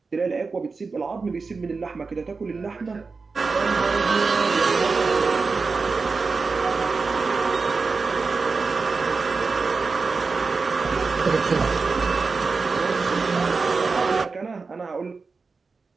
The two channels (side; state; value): left; quieter; 4.4 dB